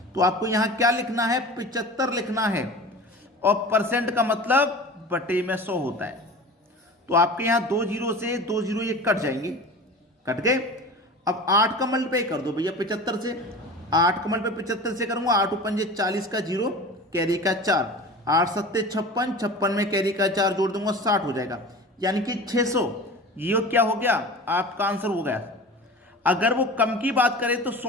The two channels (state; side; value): normal; both; correlation 0.36